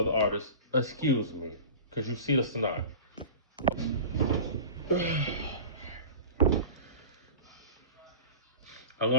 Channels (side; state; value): both; inverted; correlation -0.33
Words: artists. Excuse me, because you see the snot. I